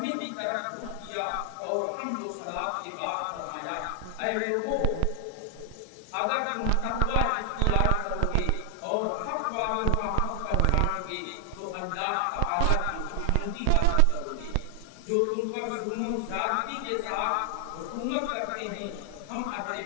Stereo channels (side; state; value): both; different; correlation 0.00